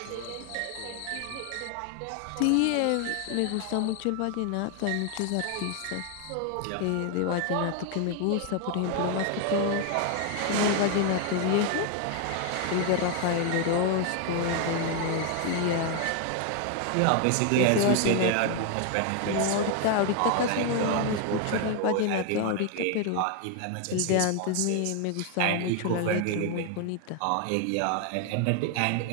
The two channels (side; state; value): both; different; correlation 0.00